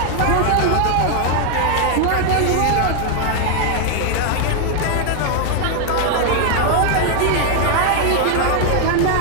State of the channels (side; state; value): both; different; correlation 0.00